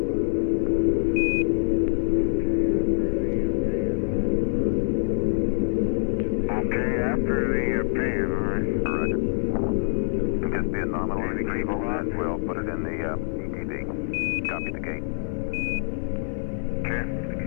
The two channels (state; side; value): silent; right; 62 dB below the other